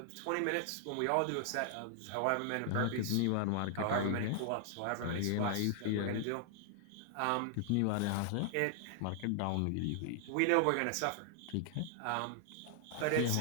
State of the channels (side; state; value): both; different; correlation 0.00